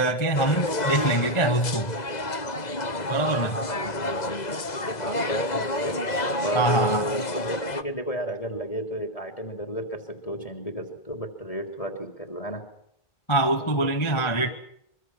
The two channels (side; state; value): right; late; 2.0 ms